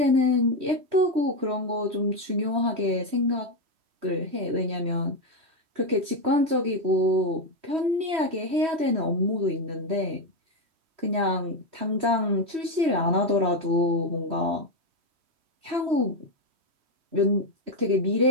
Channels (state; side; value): late; left; 3.1 ms